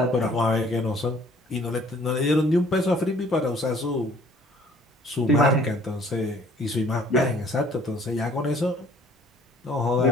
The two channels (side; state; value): both; normal; correlation 0.56